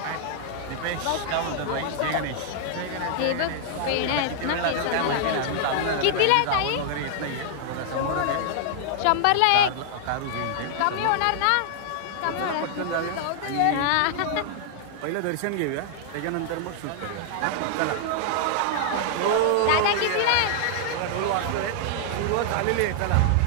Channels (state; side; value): different; both; correlation -0.01